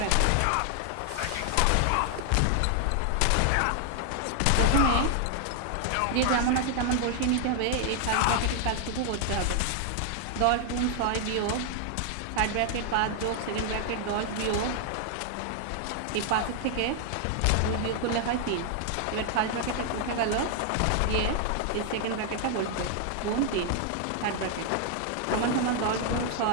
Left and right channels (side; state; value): both; different; correlation 0.00